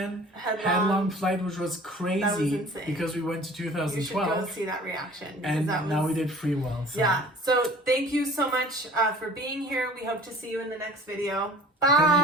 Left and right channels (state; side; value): normal; both; correlation 0.46